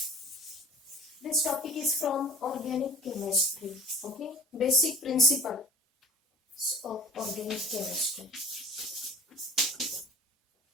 this topic is from organic chemistry. Okay, basic principles of organic chemistry.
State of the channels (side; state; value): both; normal; correlation 0.46